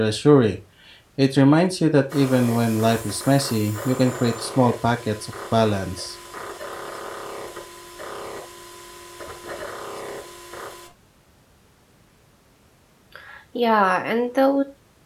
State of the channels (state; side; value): identical; both; correlation 1.00